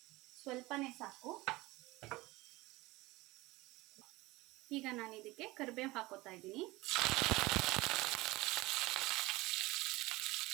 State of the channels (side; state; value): left; quieter; 20.7 dB